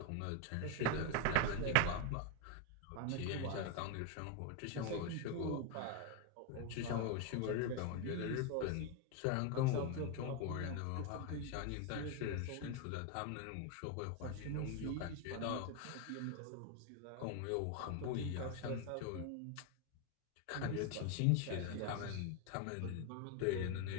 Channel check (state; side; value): different; both; correlation 0.01